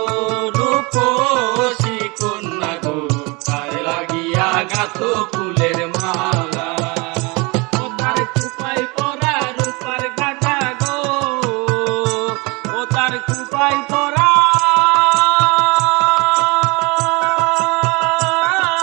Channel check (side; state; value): left; quieter; 27.3 dB